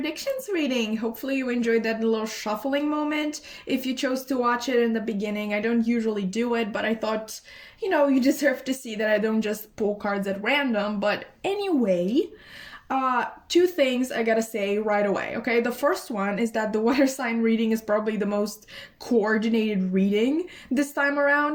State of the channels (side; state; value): both; identical; correlation 1.00